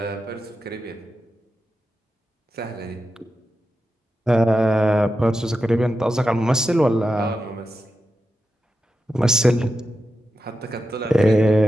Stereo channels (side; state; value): both; normal; correlation 0.90